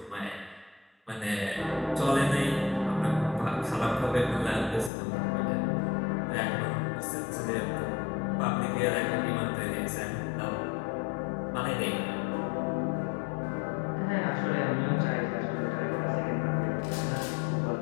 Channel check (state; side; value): drops out; right; at 4.9 s